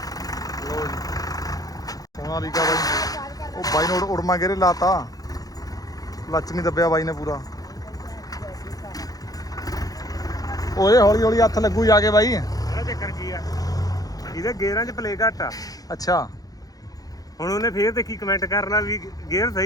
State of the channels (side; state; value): right; late; 0.18 ms